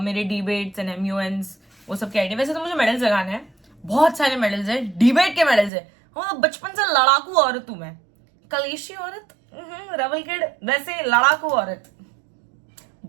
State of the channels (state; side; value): drops out; left; at 5.7 s